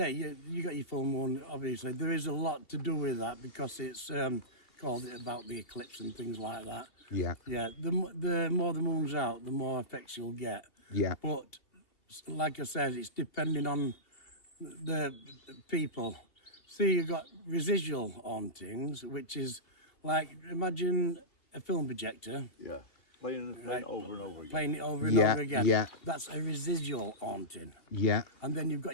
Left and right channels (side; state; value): right; late; 2.7 ms